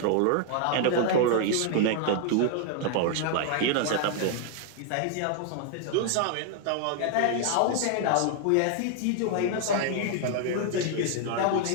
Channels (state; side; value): different; both; correlation 0.00